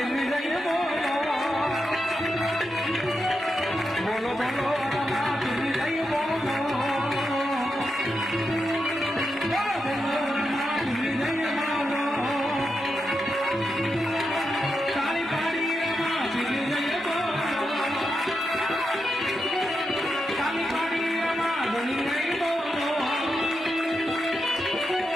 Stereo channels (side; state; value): both; normal; correlation 0.86